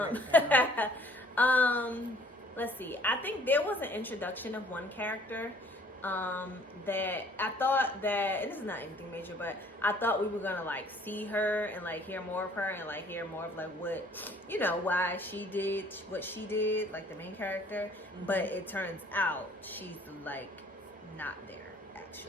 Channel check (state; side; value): normal; both; correlation 0.57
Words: Let's see. I think there was an introduction of one character that I thought that, and this is not anything major, but I thought we were gonna like see her and like hear more of her and like hear more of like what, you know, why she did what she did, like the main character. But it turns out she's like not there